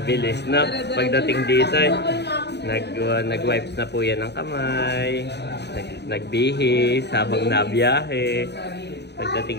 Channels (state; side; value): late; right; 0.49 ms